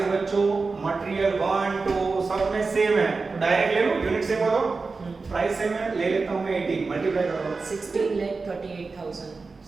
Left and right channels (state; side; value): quieter; left; 4.2 dB